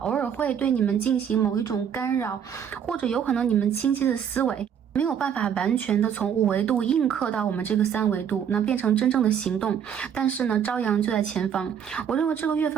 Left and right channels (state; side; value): quieter; left; 8.2 dB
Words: 偶尔会对你们进行某一种干扰，或者有可能你们清晰的思维没有办法完全的从5维度映刻到我们这个3维度，那变成真正的行动。但是呢，朝阳就在前方。我认为这个月